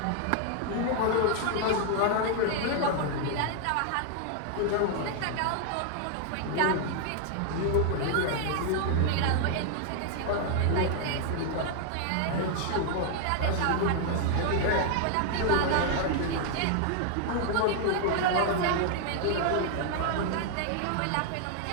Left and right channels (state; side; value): different; both; correlation 0.00